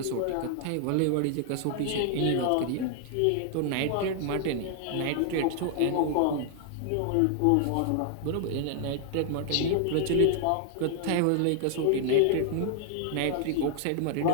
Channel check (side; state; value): both; different; correlation 0.00